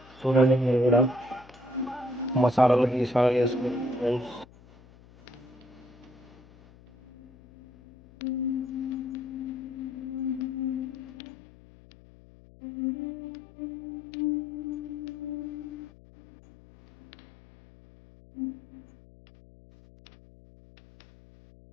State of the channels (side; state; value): left; noise; hum, 23 dB below the sound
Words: చూడండి, మీరు కూడా మసాలాలు గీసాలు వేసుకుని ఫ్రెండ్స్.